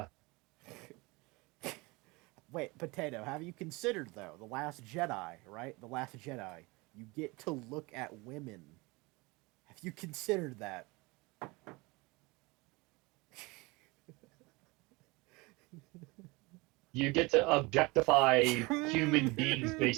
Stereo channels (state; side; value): quieter; left; 24.8 dB